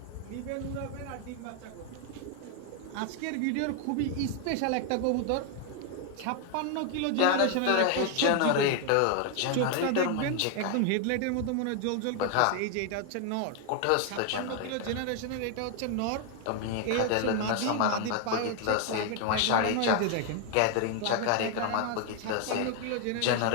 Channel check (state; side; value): different; both; correlation 0.01